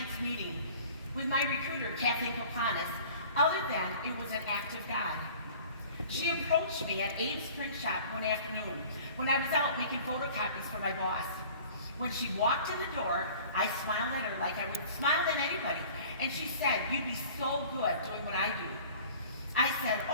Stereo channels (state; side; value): inverted; both; correlation -0.46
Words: meeting with my recruiter, Kathleen Kopanis, other than it was an act of God. She approached me at Abe's print shop one afternoon when I was out making photocopies for my boss. When she walked in the door, I smiled at her like I would smile at anybody, and she said, "You'd be so good doing what I do." I said,